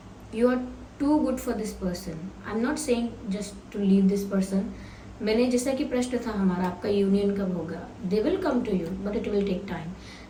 You are too good for this person. I am not saying just to leave this person. मैंने जैसा कि प्रश्न था हमारा, आपका यूनियन कब होगा, they will come to you but it will take time.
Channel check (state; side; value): identical; both; correlation 1.00